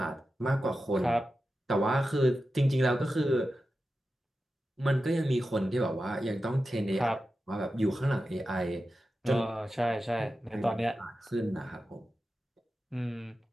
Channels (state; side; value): normal; both; correlation 0.92